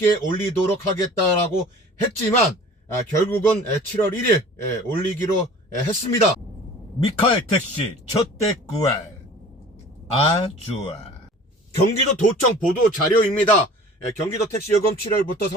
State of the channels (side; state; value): both; normal; correlation 0.44